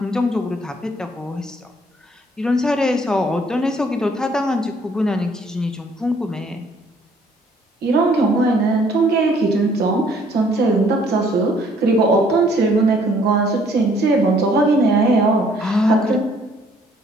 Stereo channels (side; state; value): both; normal; correlation 0.62